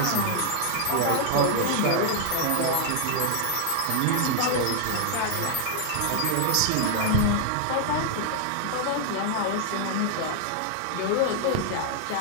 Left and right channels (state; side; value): different; both; correlation 0.00